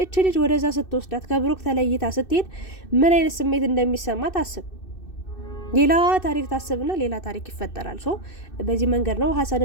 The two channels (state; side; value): late; right; 2.6 ms